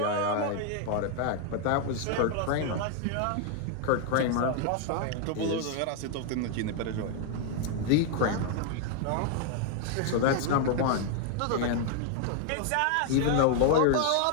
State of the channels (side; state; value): both; different; correlation 0.00